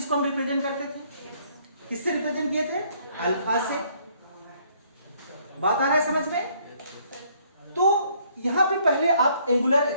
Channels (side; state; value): both; inverted; correlation -0.65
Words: हम रिप्रेजेंट करते थे, किससे रिप्रेजेंट किए थे, अल्फा से। बात आ रहा है समझ में। तो यहां पे पहले आप एंगुलर